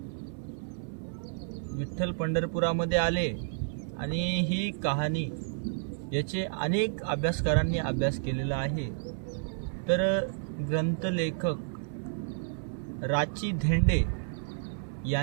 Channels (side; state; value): left; silent; 57 dB below the other